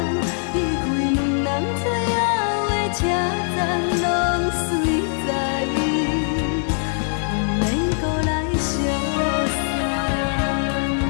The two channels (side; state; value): right; silent; digital silence